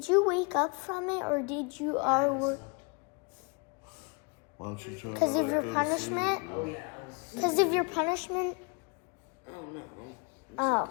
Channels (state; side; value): quieter; right; 31.7 dB